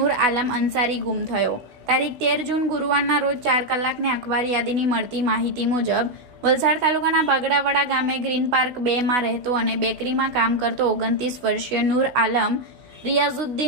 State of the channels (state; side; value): late; left; 16 ms